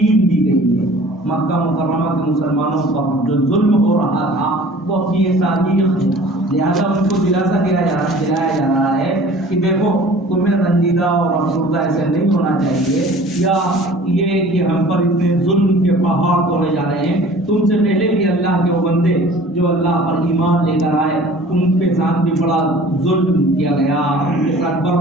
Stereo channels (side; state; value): both; normal; correlation 0.47